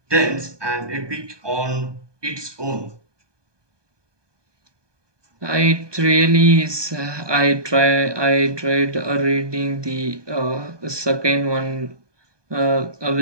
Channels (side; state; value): left; late; 1.2 ms